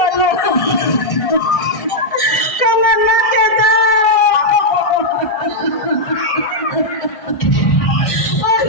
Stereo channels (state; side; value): late; right; 1.5 ms